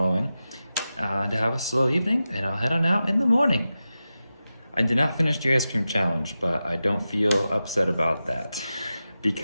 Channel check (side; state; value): both; inverted; correlation -0.92